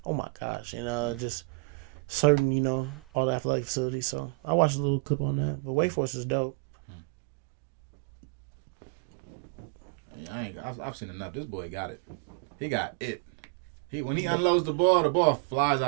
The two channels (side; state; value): left; drops out; at 4.7 s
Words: oh my gosh, and just certain, all the athletic facilities. So I watched a little clip on that. But Wake Forest is dope. Yeah, I've seen enough. This boy got it. He got it. When he unloads the ball flies